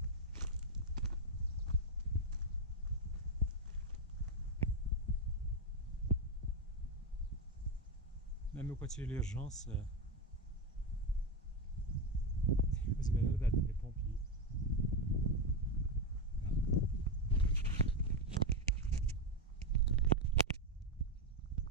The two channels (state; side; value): normal; both; correlation 0.09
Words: Même quand il y a l'urgence, vous avez l'air des pompiers.